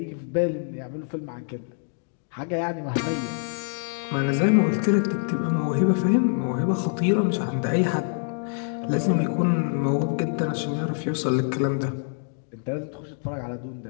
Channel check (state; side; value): silent; right; digital silence